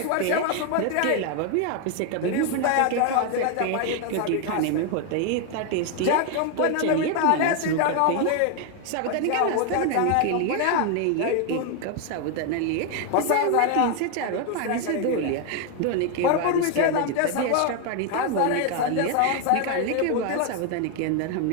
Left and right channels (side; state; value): both; different; correlation 0.01